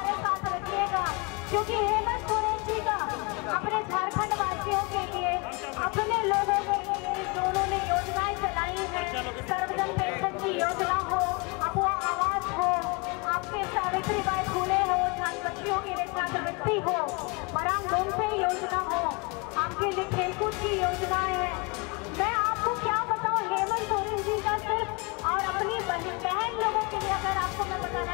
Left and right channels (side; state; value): right; quieter; 29.6 dB